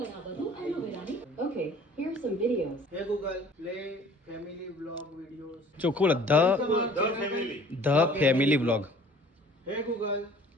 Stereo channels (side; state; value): both; normal; correlation 0.51